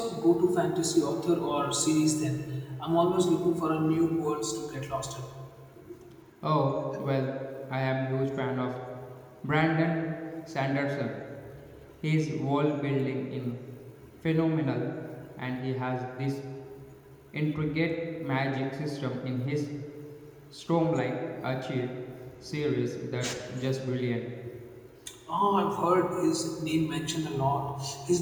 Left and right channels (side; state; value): both; identical; correlation 1.00